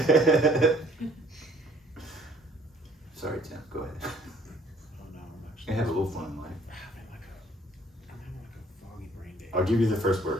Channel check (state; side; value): normal; both; correlation 0.59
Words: Sorry, Tim. Go ahead. Oh no, I'm You actually have a little fun in life. I'm having like a foggy brain day. I'll give you the first